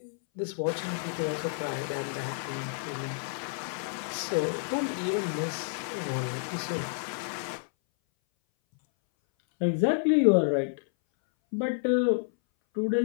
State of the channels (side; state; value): right; silent; 58 dB below the other